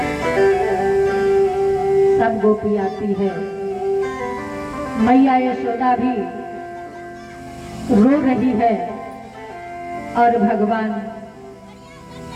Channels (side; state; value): both; identical; correlation 1.00